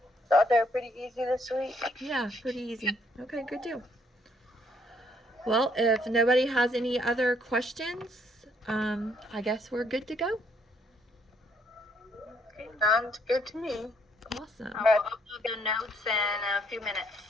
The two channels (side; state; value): both; normal; correlation 0.68